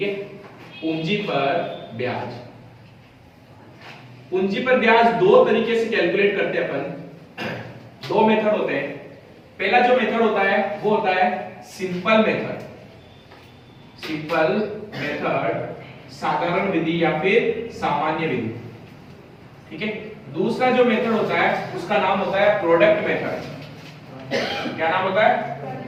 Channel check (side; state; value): both; identical; correlation 1.00